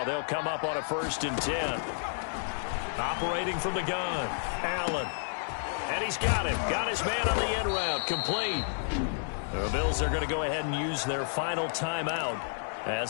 they'll come up on a 1st and 10. Operating from the gun, Allen. And he's got him. Got his man on the end route. Complete. The Bills are going to go ahead and use their final timeout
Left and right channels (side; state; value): right; silent; digital silence